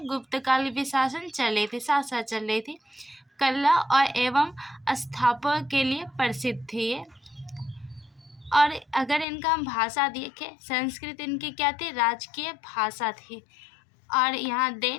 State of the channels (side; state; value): right; drops out; at 9.2 s